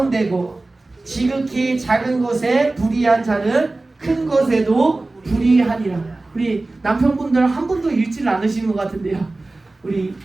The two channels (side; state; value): left; quieter; 3.1 dB